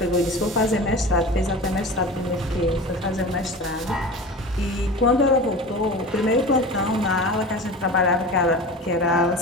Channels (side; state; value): both; normal; correlation 0.33